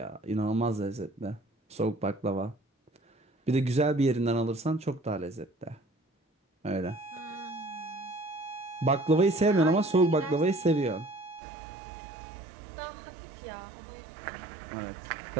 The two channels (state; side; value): drops out; left; at 11.4 s